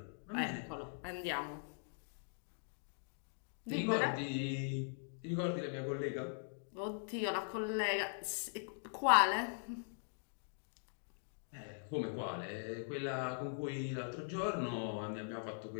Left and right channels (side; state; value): right; silent; digital silence